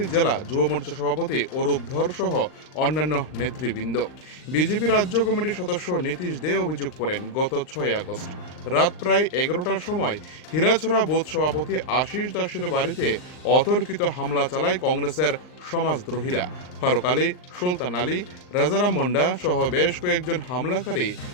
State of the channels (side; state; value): right; late; 39 ms